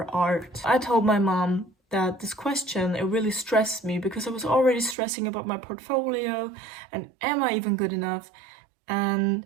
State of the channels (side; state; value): left; drops out; at 5.0 s